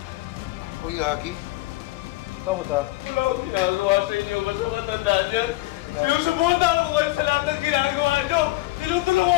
Uy, Lagi. Saan mo ta? Wala akong ginagawa sa inyo. Basta matanda dyan. Sinusubutan ko kayo sa lahat ng ginagawa nyo. Tinutulungan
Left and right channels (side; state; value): right; quieter; 19.2 dB